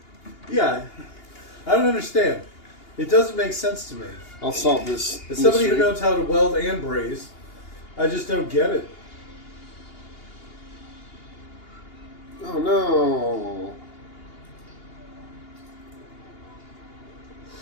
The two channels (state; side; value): late; right; 2.8 ms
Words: Yeah. I don't understand. It doesn't make sense to me. I'll solve this. As somebody who mystery. knows how to weld and braze, I just don't get it. Oh no.